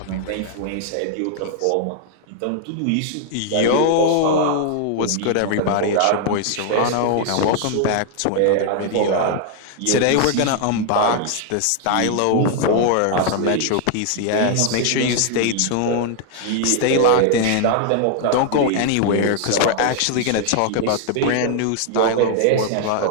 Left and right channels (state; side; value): different; both; correlation 0.00